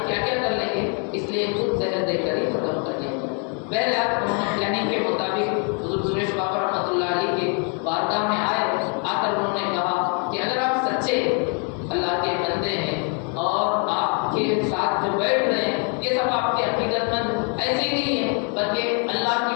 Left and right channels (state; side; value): quieter; right; 39.0 dB